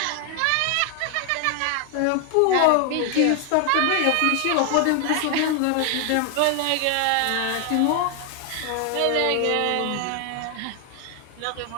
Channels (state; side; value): different; both; correlation 0.00